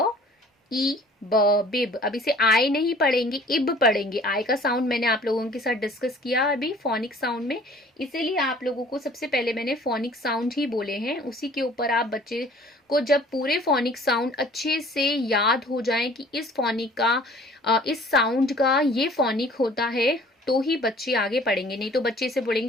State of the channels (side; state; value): both; normal; correlation 0.52